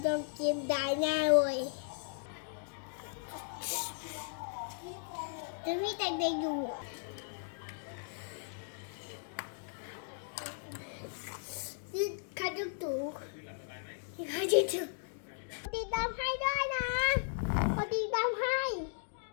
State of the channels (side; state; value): right; silent; digital silence